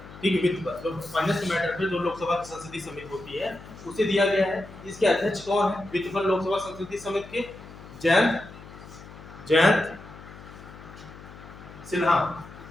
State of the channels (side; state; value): left; noise; hum, 17 dB below the sound